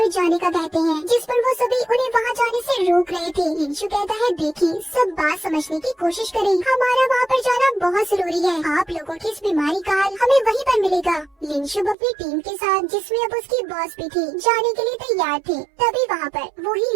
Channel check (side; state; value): left; drops out; at 12.0 s